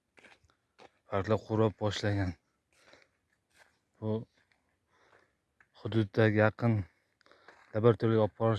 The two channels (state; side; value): identical; both; correlation 1.00